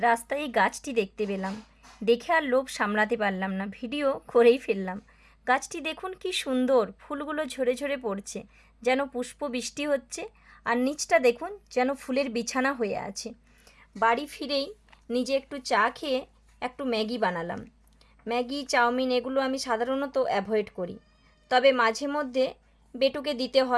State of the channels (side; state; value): both; identical; correlation 1.00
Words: এই গাছটি দেখতে পেলাম। দেখে আর লোভ সামলাতে পারলাম না, ভিডিও করেই ফেললাম। গাছটি দেখুন কি সুন্দর, ফুলগুলো ঝরে ঝরে পড়ছে, যেন পুষ্প বৃষ্টি হচ্ছে। আর নিচটা দেখুন, যেন ফুলের বিছানা হয়ে আছে। বাড়ি ফিরেই নিজে একটু চা খেয়ে একটু ম্যাগি বানালাম। ম্যাগি, চাউমিন এগুলো আমি সাধারণত অ্যাভয়েড করি, তবে মাঝে মধ্যে বেটুকে দিতে